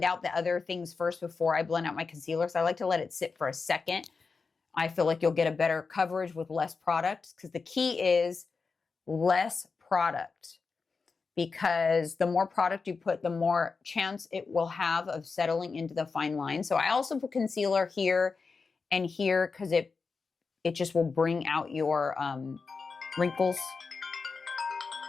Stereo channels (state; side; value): quieter; right; 4.7 dB